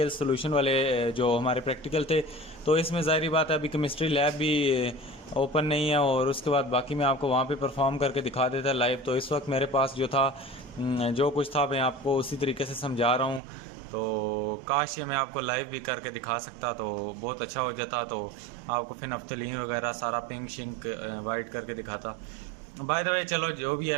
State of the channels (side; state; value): left; drops out; at 13.4 s